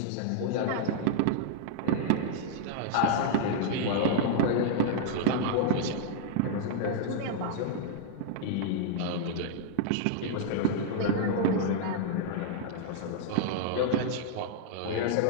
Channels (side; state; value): both; different; correlation -0.01